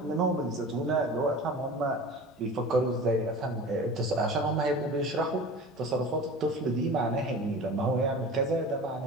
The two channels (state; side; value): normal; both; correlation 0.36